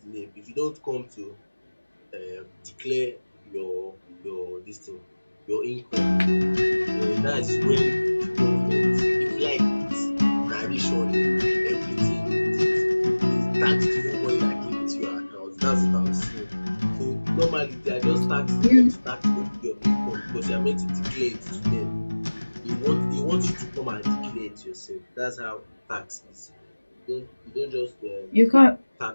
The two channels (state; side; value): inverted; both; correlation -1.00